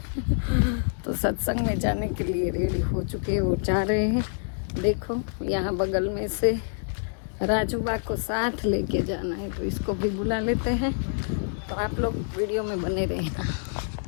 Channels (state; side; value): silent; right; digital silence